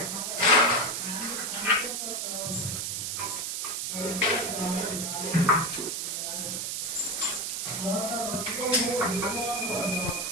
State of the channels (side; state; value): right; noise; hiss, 2 dB below the sound